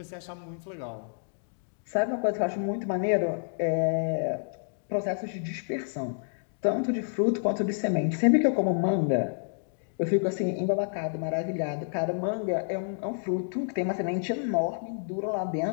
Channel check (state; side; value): silent; right; digital silence